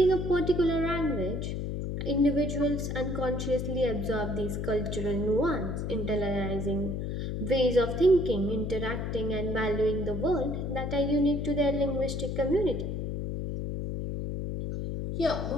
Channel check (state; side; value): noise; left; hum, 3 dB below the sound